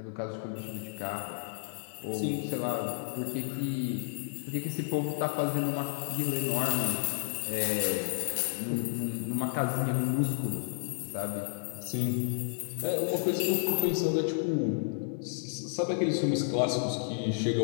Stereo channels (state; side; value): silent; right; digital silence